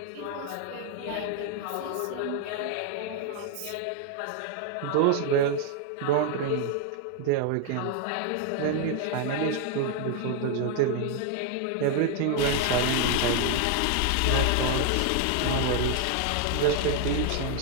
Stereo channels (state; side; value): different; both; correlation 0.00